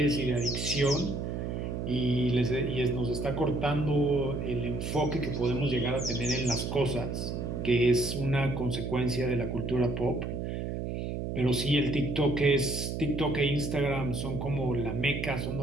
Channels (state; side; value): noise; right; hum, 3 dB below the sound